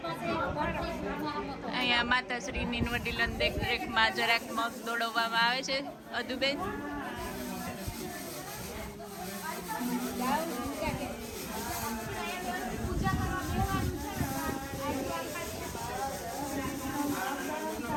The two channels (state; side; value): identical; both; correlation 1.00